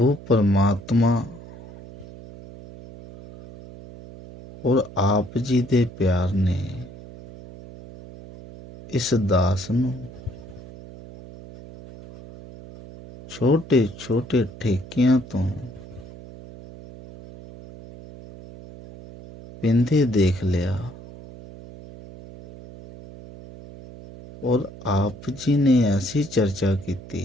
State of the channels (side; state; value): right; noise; hum, 17 dB below the sound